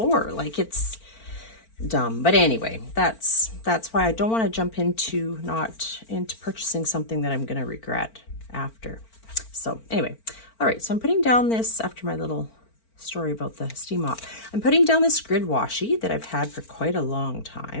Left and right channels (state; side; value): late; right; 4.4 ms